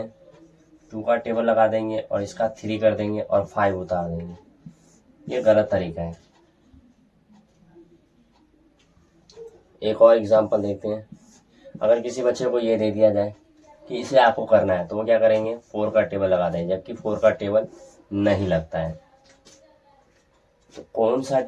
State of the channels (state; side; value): identical; both; correlation 1.00